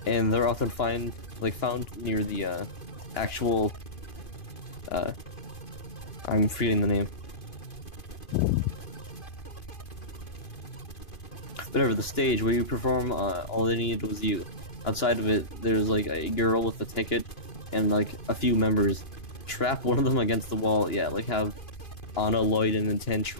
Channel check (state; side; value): late; right; 2.9 ms